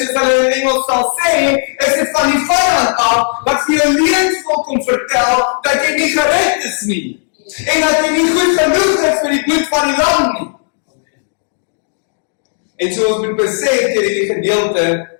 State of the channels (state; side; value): silent; right; digital silence